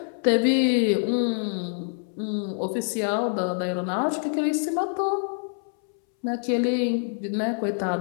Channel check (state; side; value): silent; right; 61 dB below the other